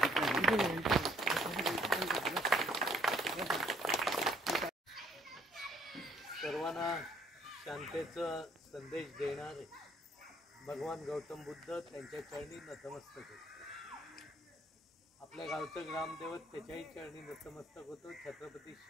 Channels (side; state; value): both; normal; correlation 0.66